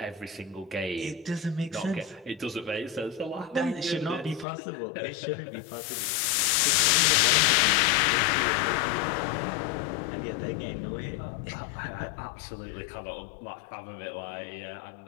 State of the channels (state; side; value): drops out; right; at 4.5 s